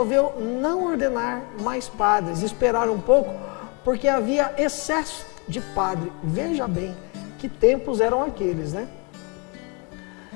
não ordenar mais padres, esperar um pouco, porque havia excesso de padre. Veja bem que tempos eram aqueles, né?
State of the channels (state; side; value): quieter; right; 32.7 dB